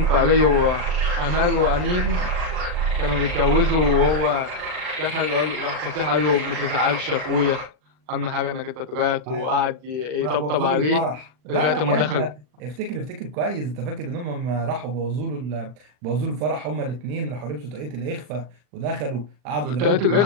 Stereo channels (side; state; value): left; late; 40 ms